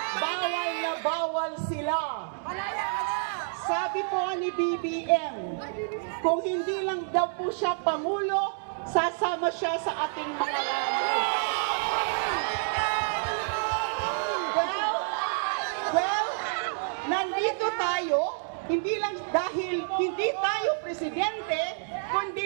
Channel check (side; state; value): left; silent; digital silence